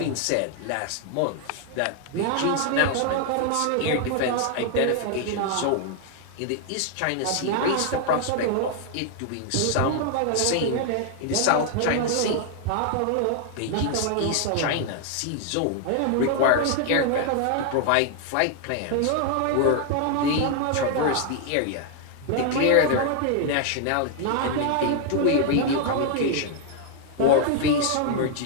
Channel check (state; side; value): different; both; correlation 0.00